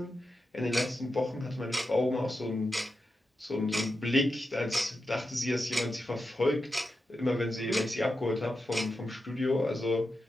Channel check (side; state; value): both; normal; correlation 0.89